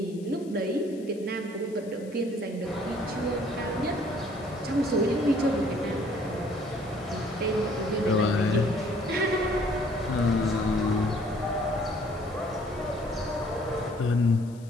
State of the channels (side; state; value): left; noise; hiss, 25 dB below the sound